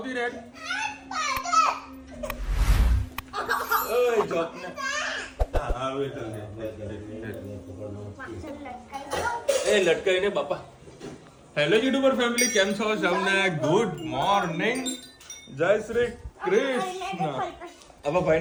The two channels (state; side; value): identical; both; correlation 1.00